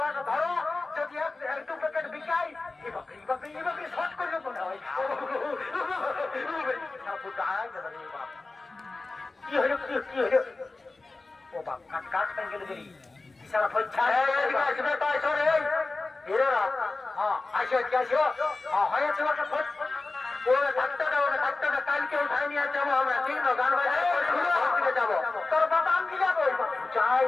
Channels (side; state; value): right; quieter; 3.4 dB